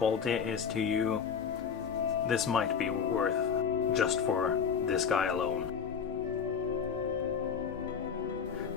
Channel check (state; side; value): quieter; right; 6.8 dB